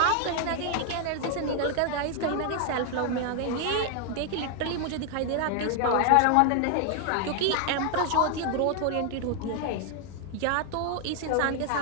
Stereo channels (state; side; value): different; both; correlation 0.00